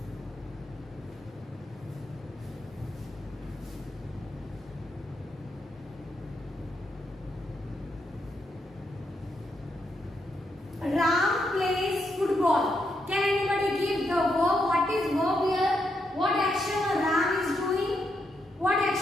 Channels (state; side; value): normal; both; correlation 0.81